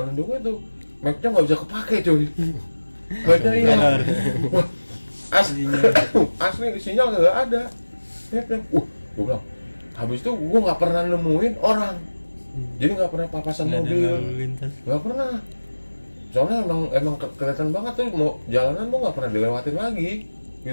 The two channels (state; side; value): inverted; both; correlation -1.00